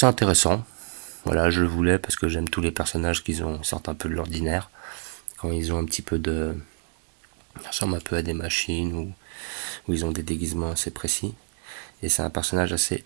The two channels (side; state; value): left; silent; digital silence